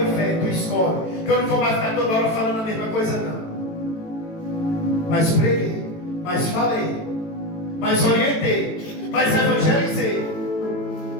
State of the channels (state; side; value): late; right; 18 ms